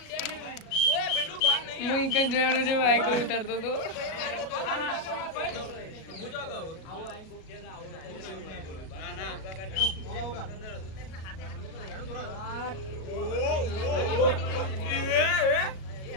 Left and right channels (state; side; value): late; right; 37 ms